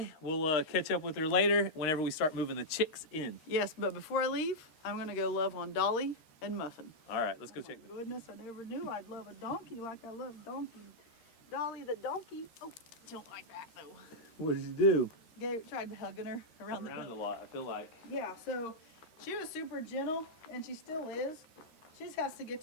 We'll catch up with her later whenever we start moving the chicks in. Yes, but before I leave, I'm going to go love on Dolly and Muffin. All right, let's go check them. Goodness, I never knew I'd love a donkey like I love donkey. Dolly the donkey. Oh, don't like that though. What did you do? Tried hugging her around the Around a belly. lot, I feel like. Yeah, so she was super gentle, and she still is. She just has to get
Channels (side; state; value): right; late; 13 ms